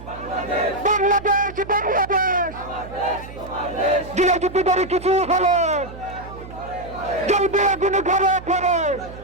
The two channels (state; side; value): noise; right; hum, 15 dB below the sound